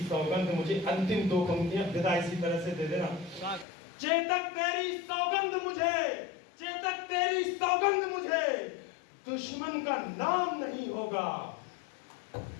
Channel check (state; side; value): drops out; right; at 3.7 s